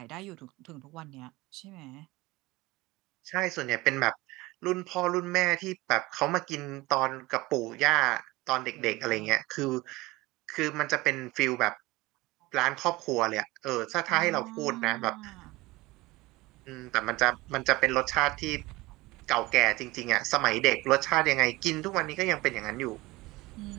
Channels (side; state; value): left; quieter; 20.8 dB